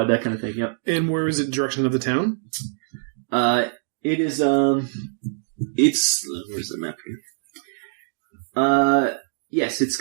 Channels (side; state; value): left; silent; digital silence